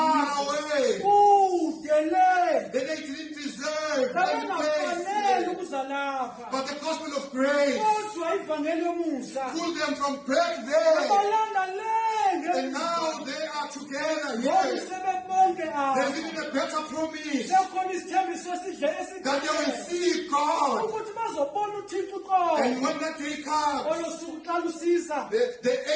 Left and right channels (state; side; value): identical; both; correlation 1.00